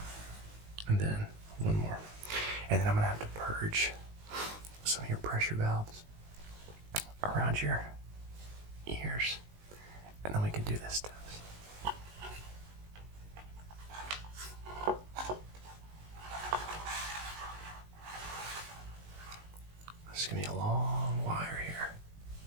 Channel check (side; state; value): left; late; 19 ms